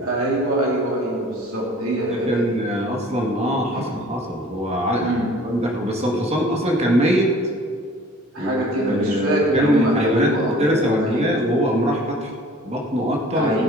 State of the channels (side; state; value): both; normal; correlation 0.49